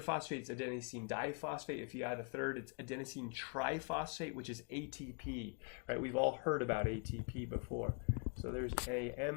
phosphate, it's adenosine diphosphate. If you add a third, it's adenosine triphosphate, which is ATP, right? We've all heard about ATP before. So there's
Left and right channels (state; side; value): quieter; right; 34.2 dB